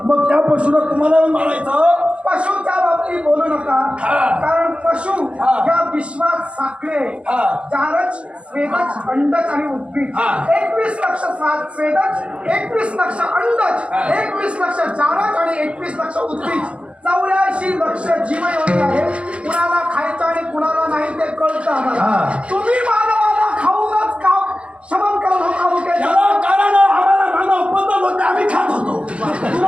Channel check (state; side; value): late; left; 0.060 ms